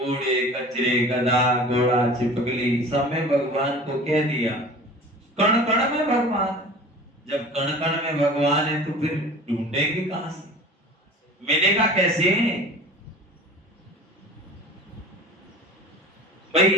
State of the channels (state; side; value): normal; both; correlation 0.40